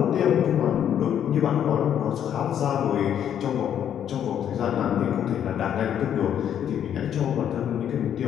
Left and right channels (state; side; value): quieter; right; 9.6 dB